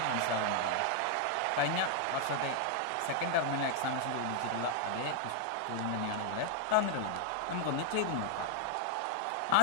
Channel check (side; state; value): both; different; correlation -0.01